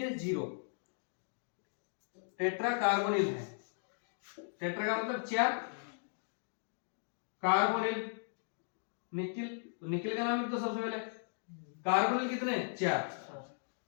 0, tetracarbonyl है, टेट्रा का मतलब 4, कार्बोनिल निकिल, निकिल का नाम लिख दो सबसे पहले, कार्बोनिल कितने 4,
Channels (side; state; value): right; silent; digital silence